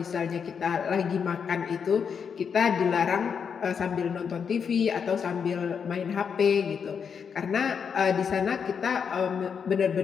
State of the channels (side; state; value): right; quieter; 6.7 dB